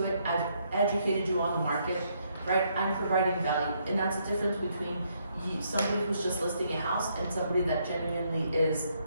it. I've educated you on the market, right? I'm providing value. And that's the difference between somebody who's just listing a house and somebody that genuinely is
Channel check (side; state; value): both; inverted; correlation -0.73